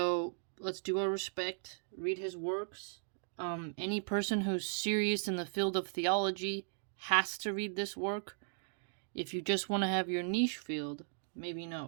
let's do our respect, read his works. Any person who's serious in the field of theology has to read this work. If you just want to have your niche field, maybe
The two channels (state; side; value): silent; left; digital silence